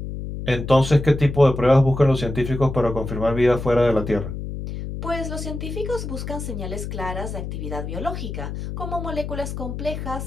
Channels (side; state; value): left; noise; hum, 7 dB below the sound